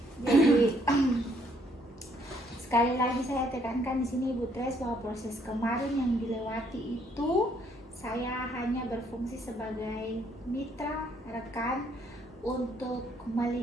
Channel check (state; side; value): normal; both; correlation 0.68